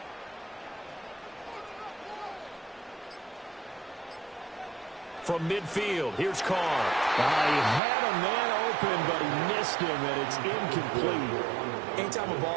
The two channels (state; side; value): drops out; left; at 7.8 s